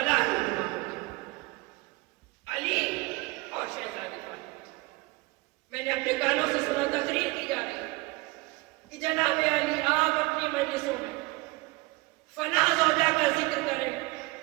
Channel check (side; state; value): left; quieter; 23.8 dB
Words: رونما ہو گیا, علی اور شہزادی فاطمہ. میں نے اپنے کانوں سے سنا, تقریر کی جا رہی کہ جناب علی آپ اپنی مجلسوں میں فلاں زوجہ کا ذکر کریں,